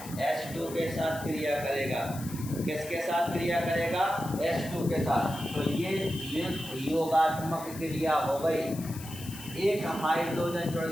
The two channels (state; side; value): noise; left; hiss, 14 dB below the sound